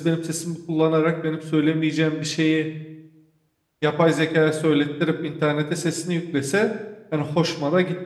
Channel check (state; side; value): identical; both; correlation 1.00